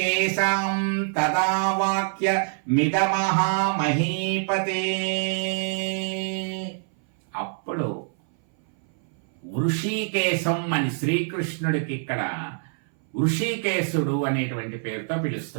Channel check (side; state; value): left; silent; 59 dB below the other